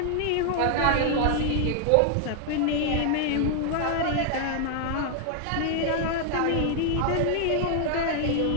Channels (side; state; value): both; different; correlation 0.00